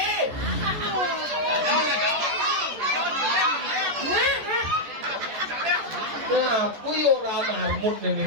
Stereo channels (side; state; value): left; late; 14 ms